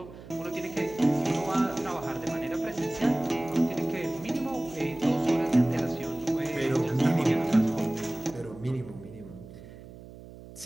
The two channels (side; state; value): right; noise; hum, 17 dB below the sound